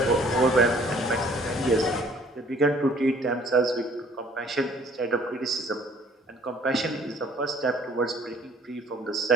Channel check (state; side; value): normal; both; correlation 0.56